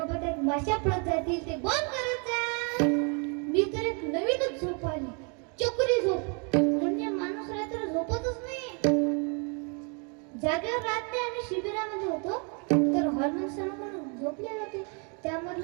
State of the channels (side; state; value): left; quieter; 36.4 dB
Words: त्यात माशा पडत जातील, ते बंद करत जा. मी तर एक नवीनच झोप आली, चक्री झोप. म्हणजे माणूस रात्र झोपतच नाही. जागेवर राहत नाही. आम्ही शिबिरामध्ये होतो तर हॉर्मोन सर म्हणून झोपले होते.